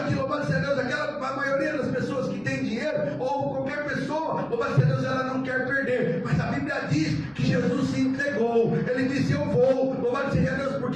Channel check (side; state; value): right; noise; hum, 28 dB below the sound